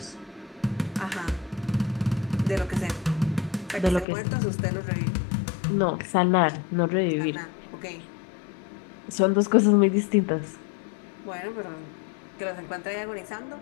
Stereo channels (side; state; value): right; drops out; at 4.0 s